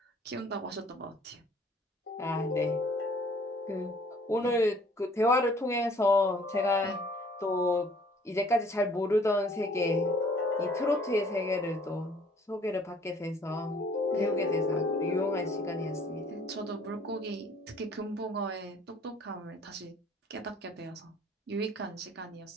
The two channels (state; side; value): normal; both; correlation 0.57